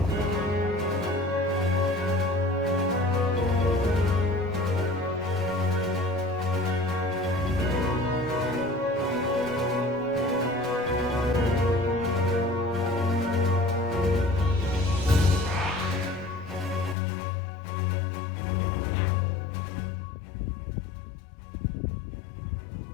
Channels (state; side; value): drops out; right; at 16.9 s